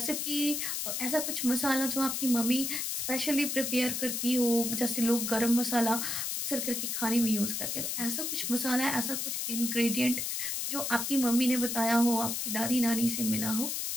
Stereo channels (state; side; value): noise; left; hiss, 2 dB below the sound